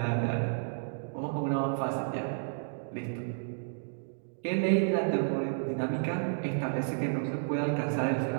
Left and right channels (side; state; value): left; silent; digital silence